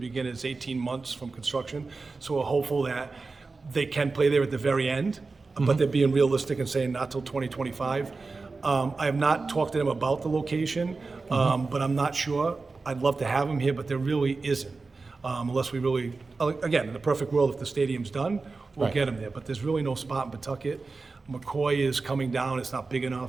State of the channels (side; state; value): left; quieter; 4.0 dB